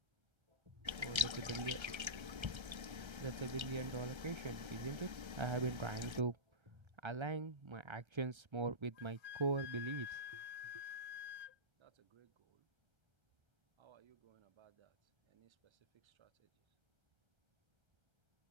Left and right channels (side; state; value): left; late; 1.3 ms